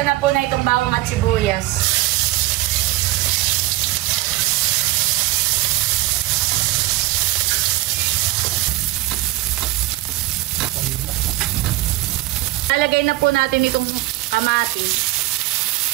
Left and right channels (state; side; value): quieter; left; 16.9 dB